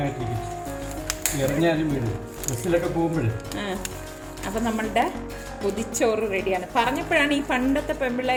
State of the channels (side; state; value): both; identical; correlation 1.00